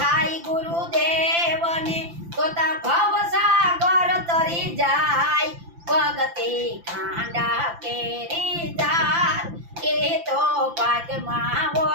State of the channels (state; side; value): late; left; 5.9 ms